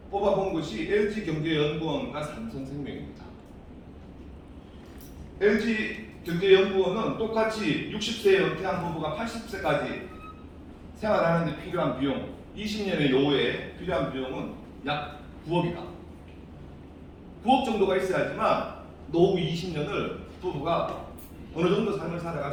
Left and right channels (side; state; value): both; identical; correlation 1.00